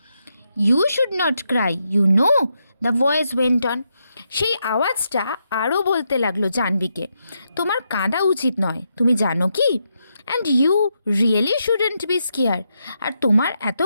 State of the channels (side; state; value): both; inverted; correlation -0.82